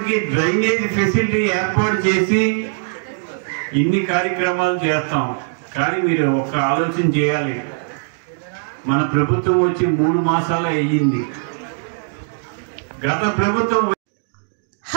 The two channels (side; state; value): left; silent; digital silence